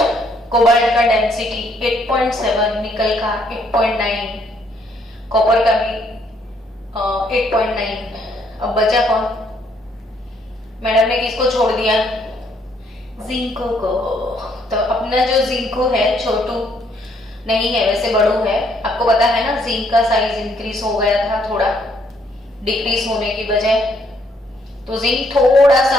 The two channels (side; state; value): both; normal; correlation 0.69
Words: कोबाल्ट का डेंसिटी 8.7, निकल का 8.9, कॉपर का भी 8.9। अब बचा कौन? मैडम ने किसको छोड़ दिया? जिंको को। तो अपना जो जिंको है छोटू, नहीं है, वैसे बड़ू है। आपको पता है ना, जिंक का साइज इंक्रीज हो गया था थोड़ा, डिक्रीज होने की बजाय। तो जिंक थोड़ा